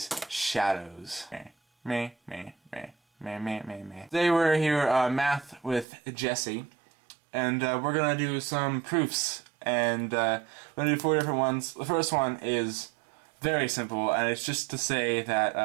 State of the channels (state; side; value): drops out; left; at 5.9 s